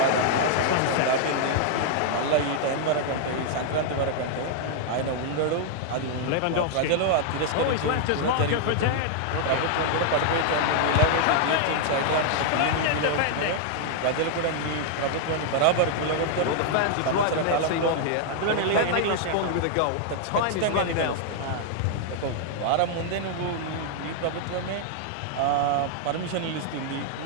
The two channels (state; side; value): different; both; correlation -0.01